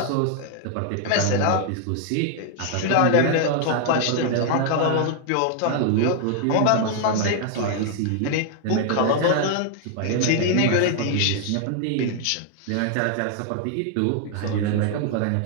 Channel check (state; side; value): different; both; correlation 0.00